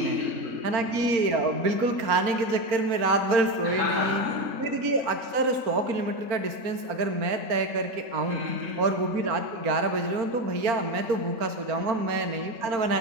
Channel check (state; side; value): late; left; 4.3 ms